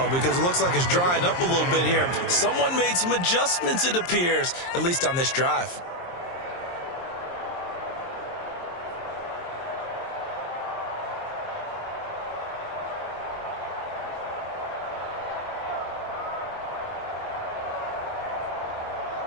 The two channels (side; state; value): right; late; 23 ms